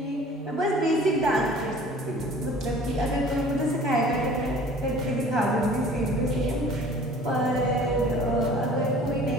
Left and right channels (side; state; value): both; normal; correlation 0.48